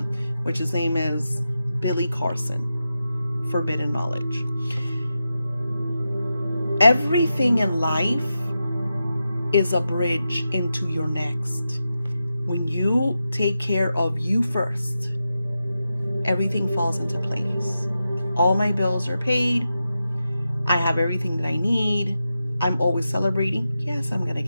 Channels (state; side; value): inverted; both; correlation -0.90